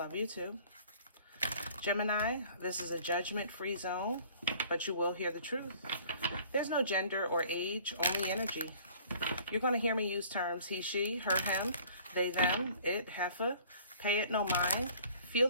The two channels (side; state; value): both; inverted; correlation -0.52